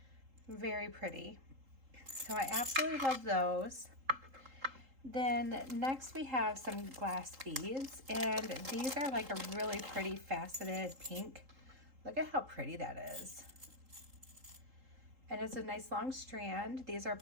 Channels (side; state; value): left; late; 3.8 ms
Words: Very pretty. So I absolutely love those. Then next we have some glass beads, and these are like a really pretty faceted pink. Look at how pretty that is. And it's a nice long strand. These are